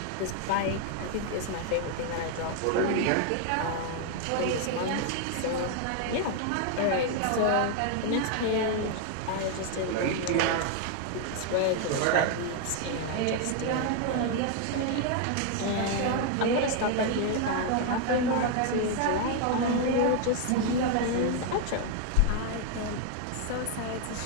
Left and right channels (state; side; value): different; both; correlation 0.00